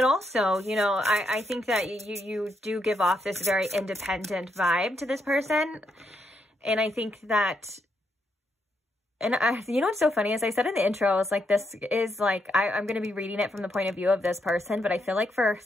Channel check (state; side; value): normal; both; correlation 0.79